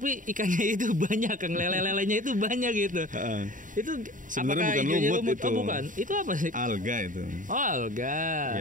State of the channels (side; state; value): left; late; 0.38 ms